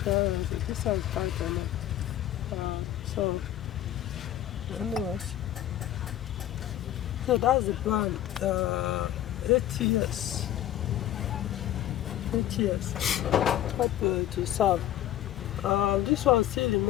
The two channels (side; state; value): right; quieter; 12.8 dB